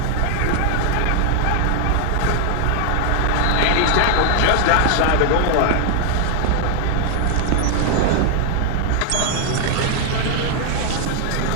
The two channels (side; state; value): both; different; correlation 0.00